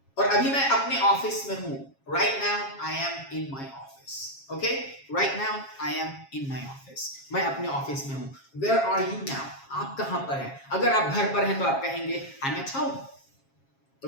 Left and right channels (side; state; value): right; late; 7.4 ms